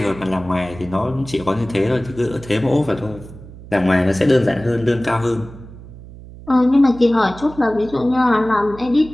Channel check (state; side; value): noise; right; hum, 17 dB below the sound